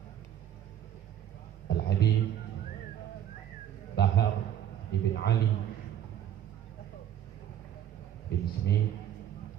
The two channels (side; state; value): left; quieter; 10.4 dB